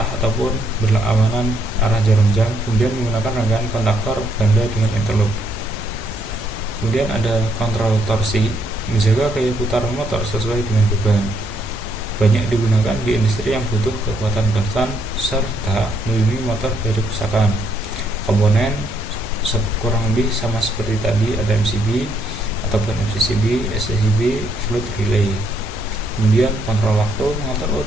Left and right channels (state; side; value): normal; both; correlation 0.73